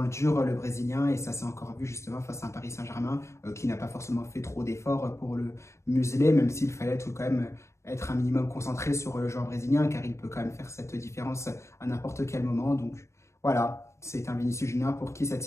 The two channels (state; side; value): late; right; 0.14 ms